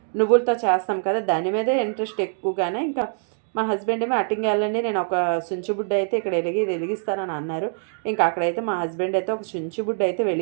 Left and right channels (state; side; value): silent; left; 63 dB below the other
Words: నువ్వులతో చేస్తాం కదా, దాని మీదే ఇంట్రెస్ట్ ఎక్కువగానే. ఇంకా మా హస్బెండ్ ఏమో అటింగ్ వెళ్ళండి, నేను ఒక సుంచుబుడ్డ అయితే ఇక్కడ వెలిగిస్తానని అన్నారు. ఇంకా అక్కడైతే మా హస్బెండ్ అయితే ఒక సుంచుబుడ్డ అయితే